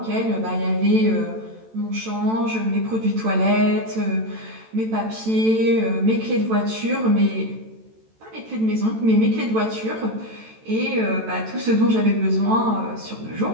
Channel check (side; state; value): left; late; 14 ms